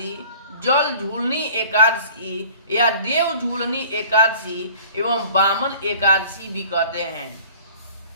जल झूलनी एकादशी या देव झूलनी एकादशी एवं वामन एकादशी भी कहते हैं।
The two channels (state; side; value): inverted; both; correlation -0.48